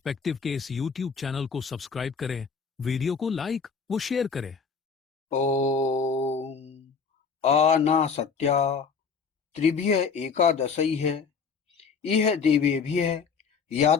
के इस YouTube चैनल को सब्सक्राइब करें, वीडियो को लाइक व शेयर करें। ओम आनासत्या त्रिभ्य एकादशैः इह देवेभ्यः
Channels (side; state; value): right; quieter; 5.7 dB